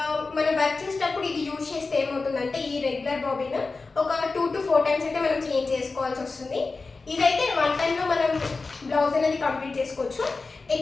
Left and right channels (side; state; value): right; quieter; 3.9 dB